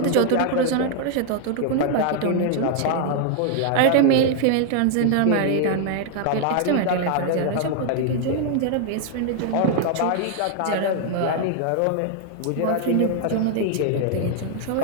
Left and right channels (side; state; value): both; different; correlation 0.00